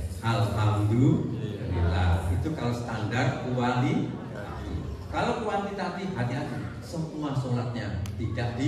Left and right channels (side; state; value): both; identical; correlation 1.00